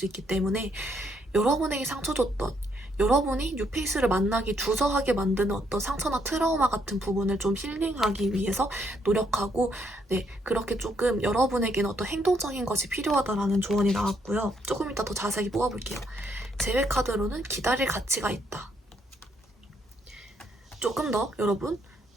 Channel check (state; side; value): normal; both; correlation 0.73